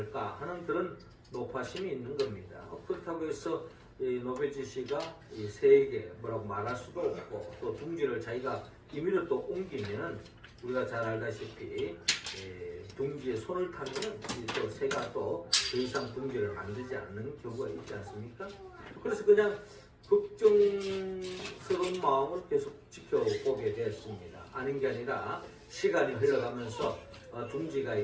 하는 그런 노파심이 있는 겁니다. 그렇다고 해서 이 노베치 씨가 이 새에게 뭐라고 말할 수도 없고 또 둥지를 자기가 임의로 또 옮기면은 우리가 잘 알다시피 둥지에 손을 타면은 또 새가 또 더 이상 둥지를 만들지 않는 경우가 있지 않습니까? 그래서 그냥 걱정스러운 마음을 계속 지켜보게 되었습니다. 아닌 게 아니라 시간이 흘러가면서 둥지가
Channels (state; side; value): identical; both; correlation 1.00